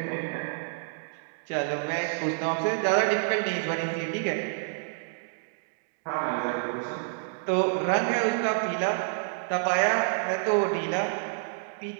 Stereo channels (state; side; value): silent; left; digital silence